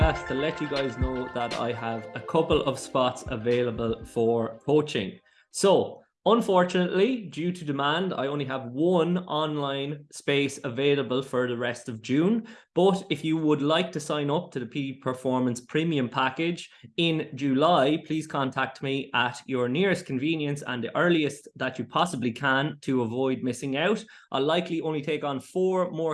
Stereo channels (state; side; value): identical; both; correlation 1.00